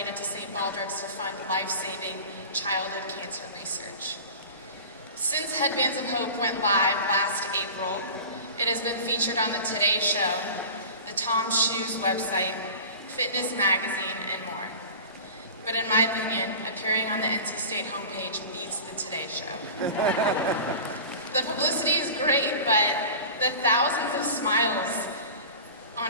to St. Baldrick's to fund life-saving childhood cancer research. Since Headbands of Hope went live last April, it has been featured on the Today Show, the Tom Shoes website, Fitness Magazine, and more. But in my opinion, appearing on the NC State homepage beats the Today Show. The publicity is great, but the thousands of smiles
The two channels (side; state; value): both; inverted; correlation -0.36